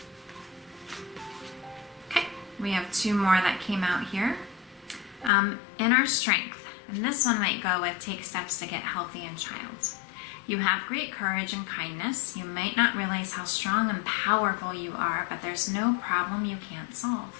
Okay, we have two more that came out here. Inner strength. And this one might go with take steps to get healthy in child. You have great courage and kindness. You might not realize how strong and powerful you are, but there's no problem you can't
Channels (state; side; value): drops out; right; at 5.3 s